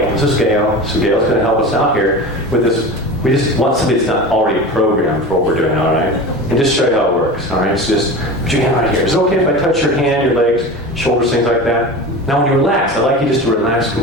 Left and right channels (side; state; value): both; normal; correlation 0.30